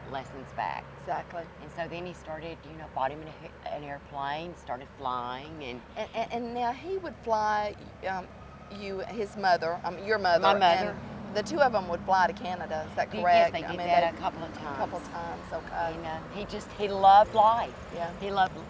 lessons back. Exactly. And so then he started, bought him an airplane, started flying, and now he would fly his mother, your mother. My mother. And the two of them would fly to Canada. Is that correct? Yes, they did that a couple of times. A couple of times, okay. And he loved life. Yeah. He loved,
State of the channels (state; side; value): identical; both; correlation 1.00